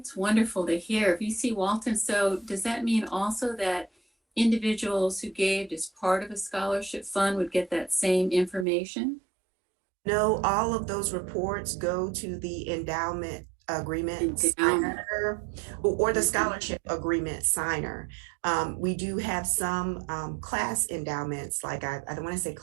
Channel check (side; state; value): left; drops out; at 8.7 s